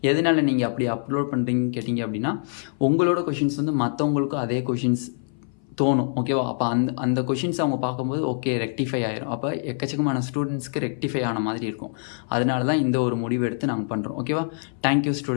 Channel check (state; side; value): silent; right; 58 dB below the other